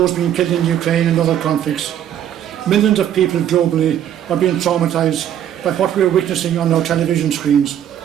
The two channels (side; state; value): left; quieter; 10.4 dB